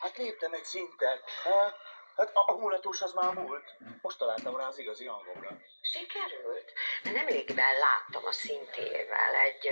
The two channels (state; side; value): inverted; both; correlation -1.00